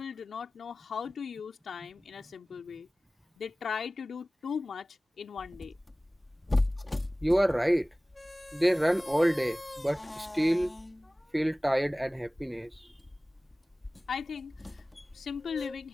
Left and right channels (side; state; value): both; normal; correlation 0.98